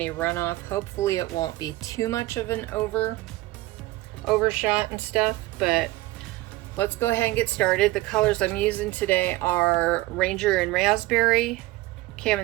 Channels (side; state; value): left; quieter; 18.6 dB